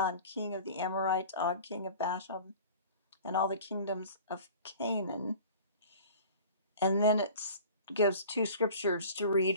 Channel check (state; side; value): inverted; both; correlation -0.41